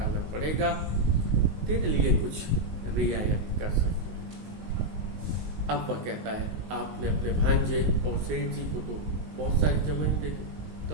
पड़ेगा, तेरे लिए कुछ रियायत कर सकते हैं। अब वह कहता है आपने अपने भांजे और सेठ जी को तो बहुत सारी जमीन दे दी।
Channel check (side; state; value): left; late; 19 ms